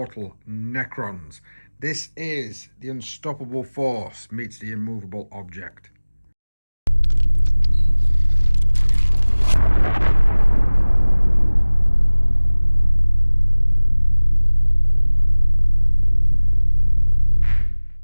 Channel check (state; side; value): inverted; both; correlation -1.00